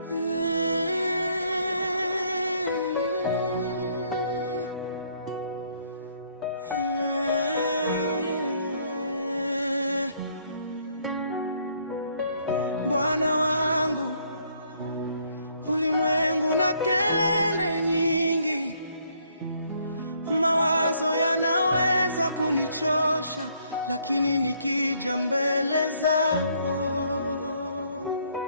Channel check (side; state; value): both; inverted; correlation -0.67